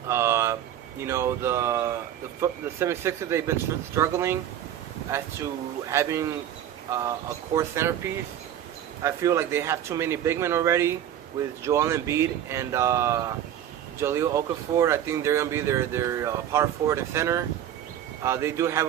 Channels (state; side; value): quieter; left; 10.7 dB